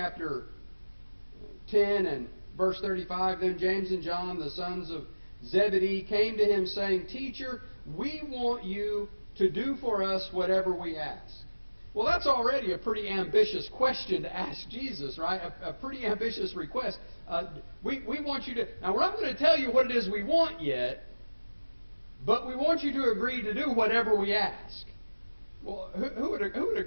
10 and verse 35. Then James and John, the sons of Zebedee, came to him saying, Teacher, we want you to do for us whatever we ask. Well, that's already a pretty ambitious question to ask Jesus, right? A pretty ambitious request. We want you to... Now, we're not going to tell you what it is we want yet, but we want you to agree to do whatever we ask. Well, who would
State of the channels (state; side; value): inverted; both; correlation -1.00